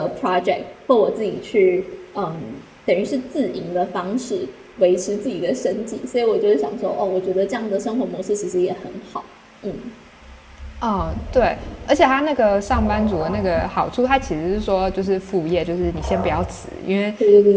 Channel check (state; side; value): identical; both; correlation 1.00